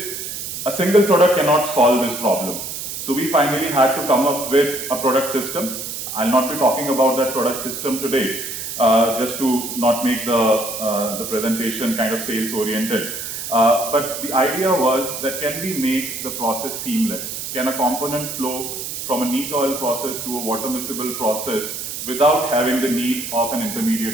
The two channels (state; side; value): noise; right; hiss, 6 dB below the sound